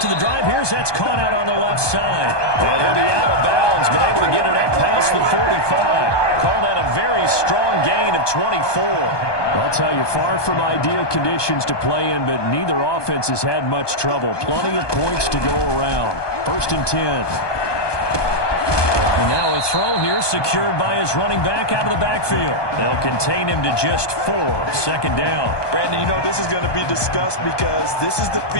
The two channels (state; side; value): late; right; 1.2 ms